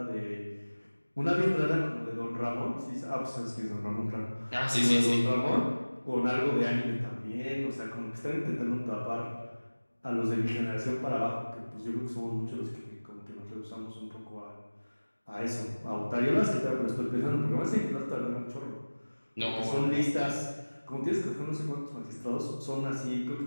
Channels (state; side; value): inverted; both; correlation -1.00